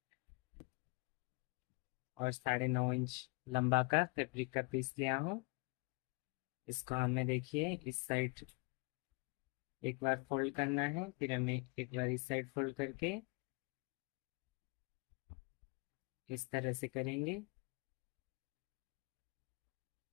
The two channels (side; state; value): right; quieter; 31.5 dB